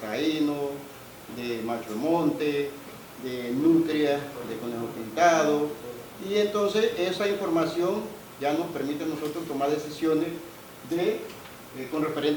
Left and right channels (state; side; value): identical; both; correlation 1.00